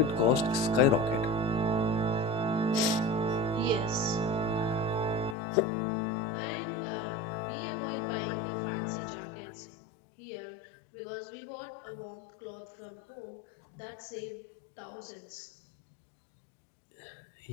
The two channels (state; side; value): drops out; right; at 5.4 s